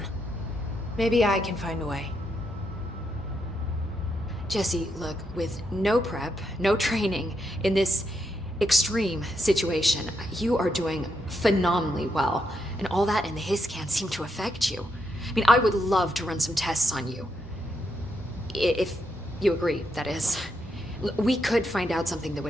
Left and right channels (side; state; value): both; normal; correlation 0.80